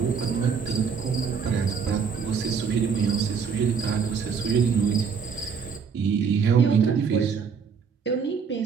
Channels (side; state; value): left; quieter; 6.2 dB